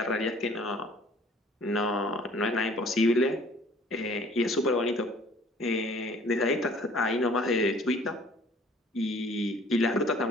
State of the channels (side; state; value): both; normal; correlation 0.53